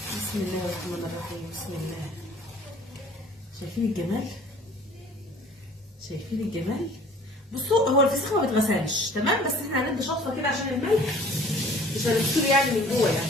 بسم الله الرحمن الرحيم. بسم الله. شايفين الجمال؟ شايفين الجمال؟ بصوا هو الفسيخ ما بيتغسلش تمام، بس احنا هندي شطفه كده عشان الملح مش هنغسله يعني من جوه، يعني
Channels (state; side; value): normal; both; correlation 0.51